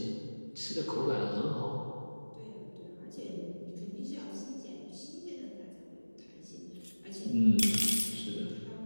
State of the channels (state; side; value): inverted; both; correlation -1.00